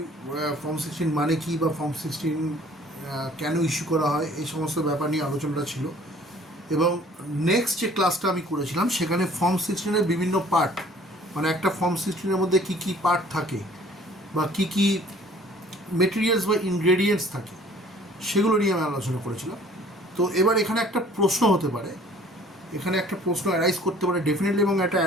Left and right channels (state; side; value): normal; both; correlation 0.53